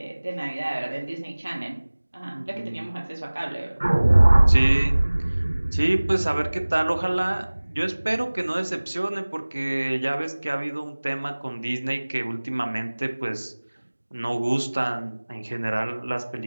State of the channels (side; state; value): both; inverted; correlation -1.00